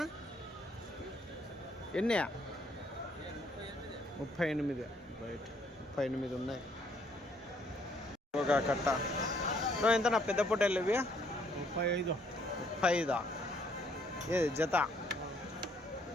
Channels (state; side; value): normal; both; correlation 0.67